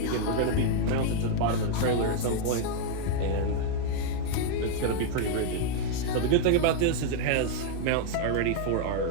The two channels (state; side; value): different; both; correlation 0.00